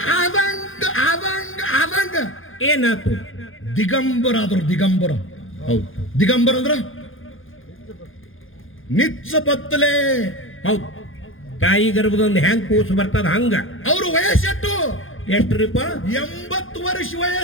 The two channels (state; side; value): late; right; 0.59 ms